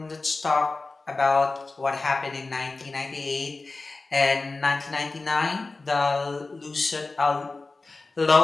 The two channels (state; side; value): quieter; right; 3.6 dB